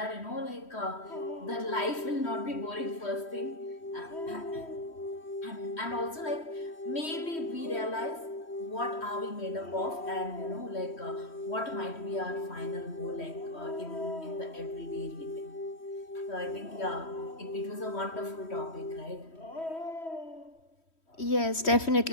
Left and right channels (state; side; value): late; right; 3.1 ms